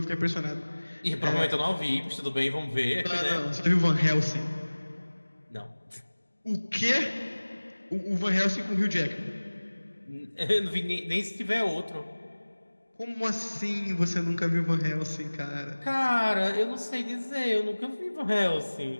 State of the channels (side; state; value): both; inverted; correlation -1.00